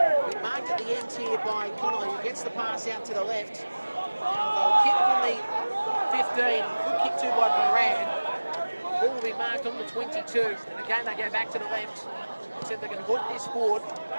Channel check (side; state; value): both; inverted; correlation -1.00